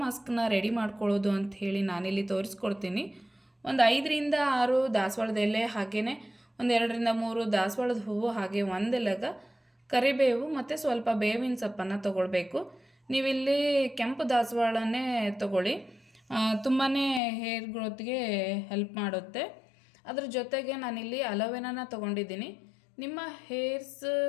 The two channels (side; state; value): right; drops out; at 17.2 s